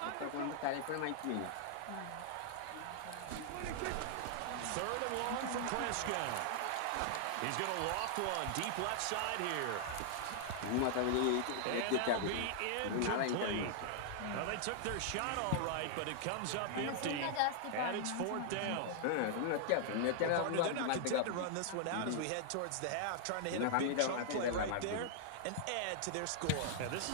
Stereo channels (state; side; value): different; both; correlation -0.01